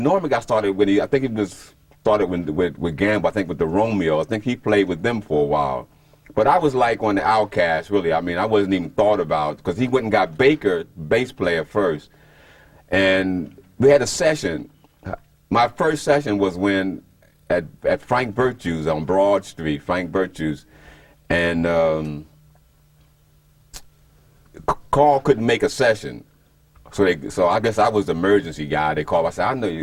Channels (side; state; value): both; identical; correlation 1.00